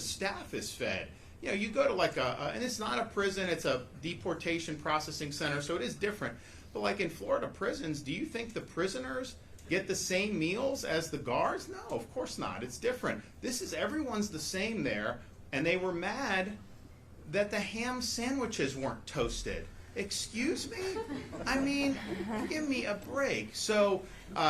is fed. You go to and it's not a prison; it's a deportation processing center, so it is different. But in Florida prisons, do you think the prisoners get the same meals as the guards? No, of course not. It's different. Everyone's the same there, and they were mad that the ham sandwiches weren't toasted. Excuse me? I mean, give me a break. So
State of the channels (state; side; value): identical; both; correlation 1.00